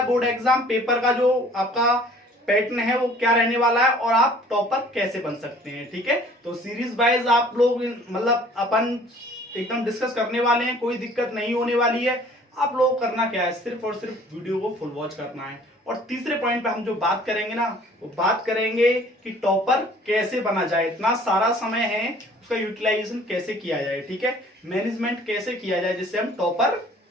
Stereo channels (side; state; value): both; normal; correlation 0.53